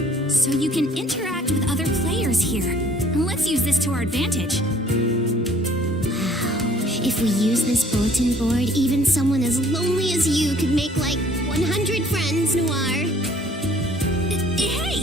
So you can interact with other players here. Let's use this to our advantage. If we use this bulletin board, even someone as lonely as you could make like 100 friends, Noir.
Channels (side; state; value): both; normal; correlation 0.58